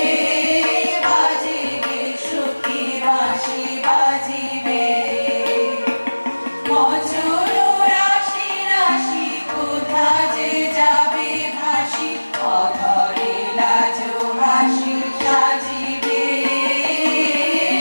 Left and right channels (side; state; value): both; inverted; correlation -1.00